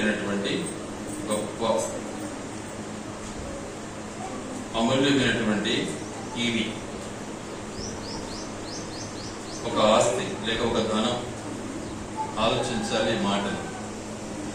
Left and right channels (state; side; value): identical; both; correlation 1.00